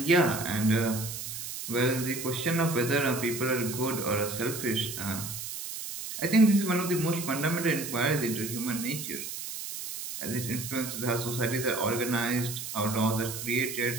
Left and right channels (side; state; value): right; noise; hiss, 7 dB below the sound